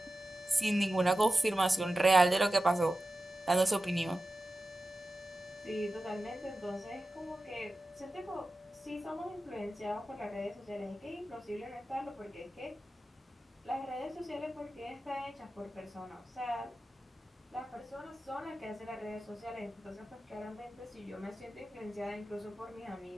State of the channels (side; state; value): both; normal; correlation 0.93